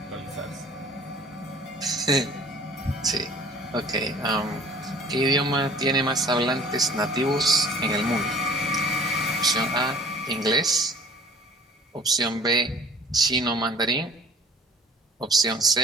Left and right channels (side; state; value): both; normal; correlation 0.48